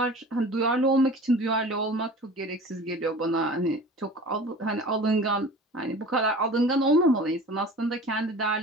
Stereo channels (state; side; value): normal; both; correlation 0.40